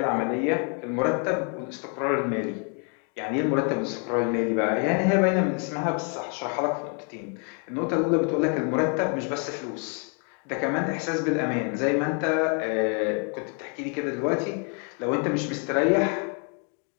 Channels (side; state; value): right; quieter; 39.8 dB